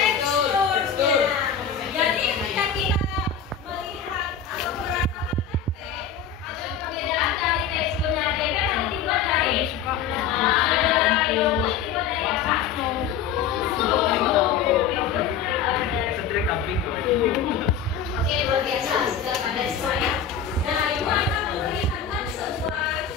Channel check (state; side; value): quieter; right; 7.3 dB